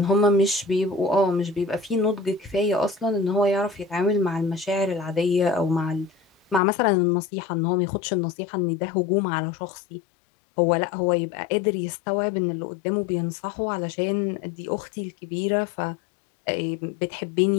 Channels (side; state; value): right; drops out; at 6.6 s